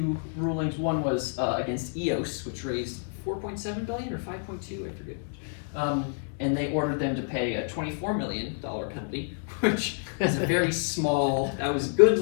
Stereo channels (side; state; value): right; silent; 59 dB below the other